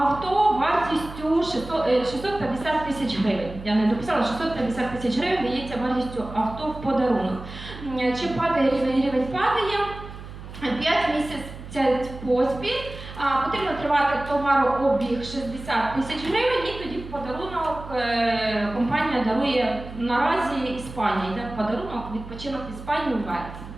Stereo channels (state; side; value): noise; right; hum, 13 dB below the sound